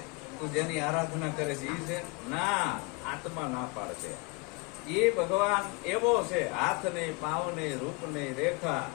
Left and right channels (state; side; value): quieter; right; 27.9 dB